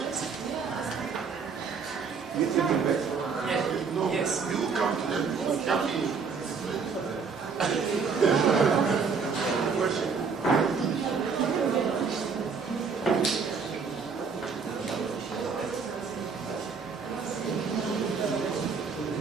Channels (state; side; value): quieter; left; 5.4 dB